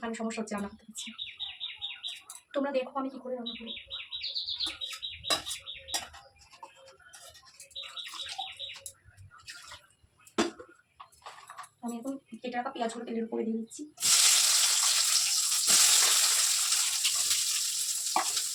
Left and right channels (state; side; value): identical; both; correlation 1.00